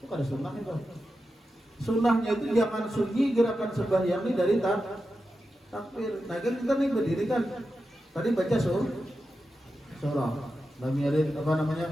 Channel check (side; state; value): both; normal; correlation 0.90